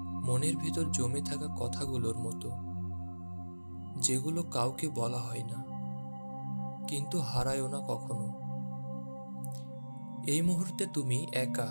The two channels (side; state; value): both; inverted; correlation -1.00